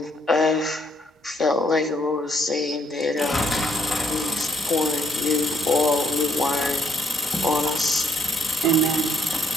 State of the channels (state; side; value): normal; both; correlation 0.71